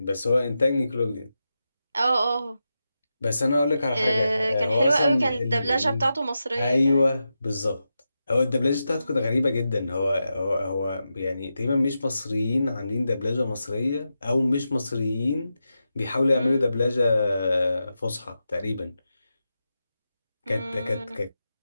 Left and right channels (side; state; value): both; inverted; correlation -0.89